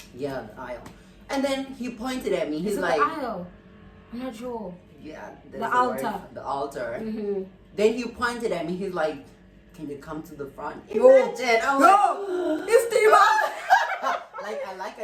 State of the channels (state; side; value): identical; both; correlation 1.00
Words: Yeah, the aisle. And then he pointed at me. He's Is it like... the aisle? I'm not sure. Yeah. The altar. The altar. Mm-hmm. Then he pointed at me. He's like, can you come to the front? No. Imagine. I'm No! It's the like, I like